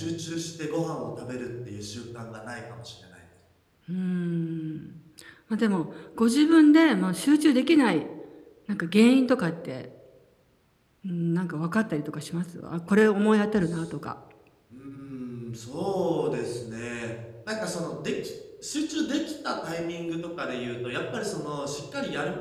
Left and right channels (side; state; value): both; identical; correlation 1.00